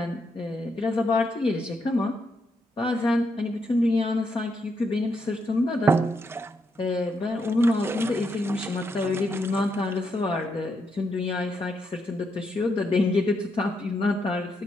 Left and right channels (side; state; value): both; normal; correlation 0.79